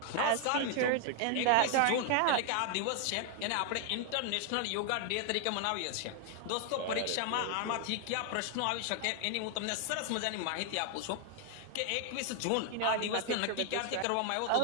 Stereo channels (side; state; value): both; different; correlation 0.00